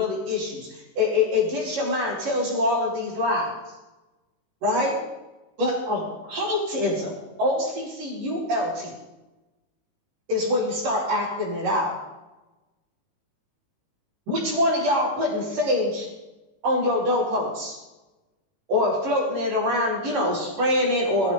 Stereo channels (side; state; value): left; late; 19 ms